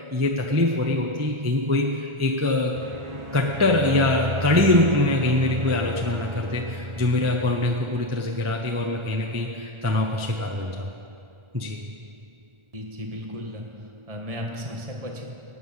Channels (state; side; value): late; left; 1.4 ms